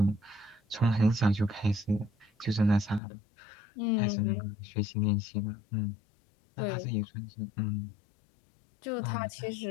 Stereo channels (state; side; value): drops out; right; at 3.0 s